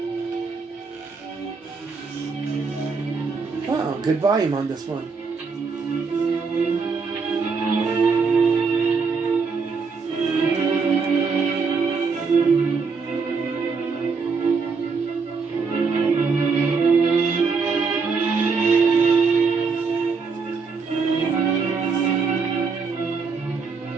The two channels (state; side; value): quieter; left; 4.9 dB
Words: Wow, good volume on this one.